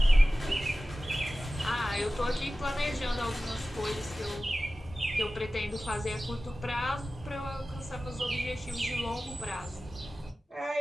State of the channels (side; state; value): both; normal; correlation 0.96